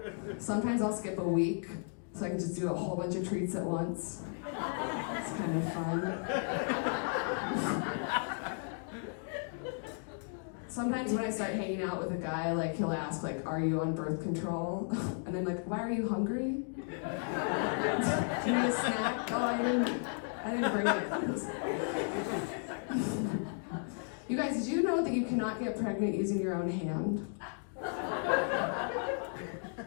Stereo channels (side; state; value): right; silent; 55 dB below the other